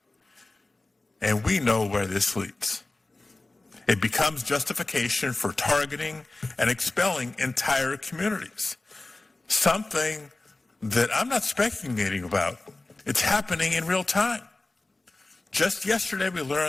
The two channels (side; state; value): right; quieter; 3.0 dB